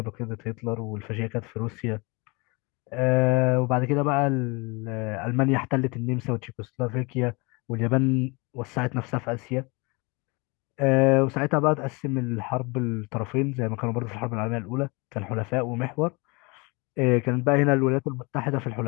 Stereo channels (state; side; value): quieter; right; 28.0 dB